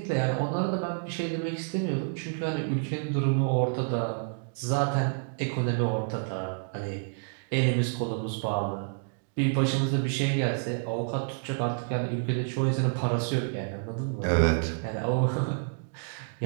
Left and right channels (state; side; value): silent; left; digital silence